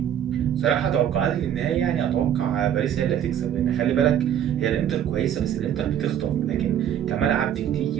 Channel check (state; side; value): quieter; left; 10.0 dB